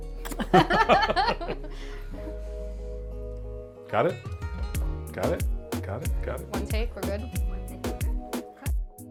Got it? Got it? Got it? Got it? One take, we're good.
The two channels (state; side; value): identical; both; correlation 1.00